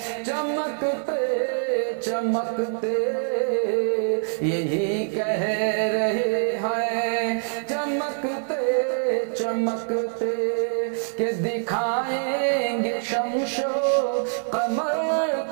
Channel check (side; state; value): left; silent; digital silence